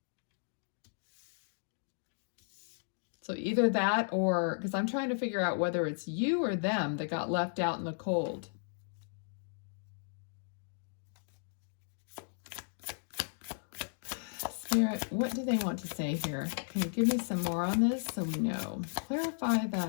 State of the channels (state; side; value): silent; right; digital silence